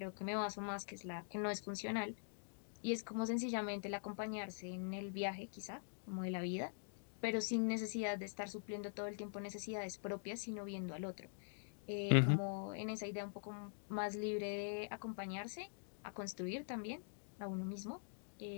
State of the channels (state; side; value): silent; right; digital silence